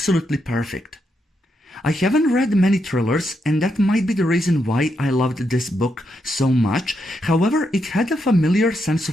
perfect. I haven't read many thrillers, and that might be the reason why I loved this book so much. However, it had a familiar sense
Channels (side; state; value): both; normal; correlation 0.81